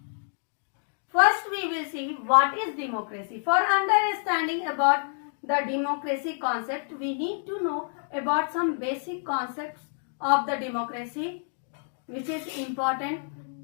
First, we will see what is democracy. For understanding about the democracy concept, we need to know about some basic concepts of the democracy which is important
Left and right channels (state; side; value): silent; right; digital silence